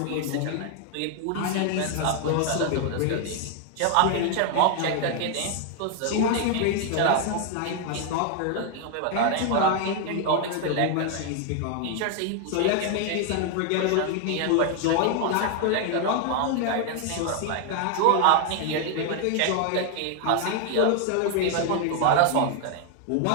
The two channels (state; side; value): different; both; correlation 0.00